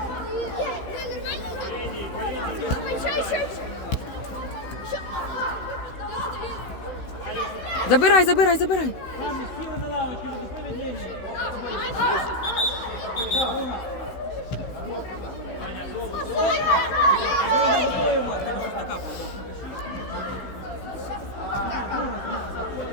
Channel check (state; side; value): late; right; 16 ms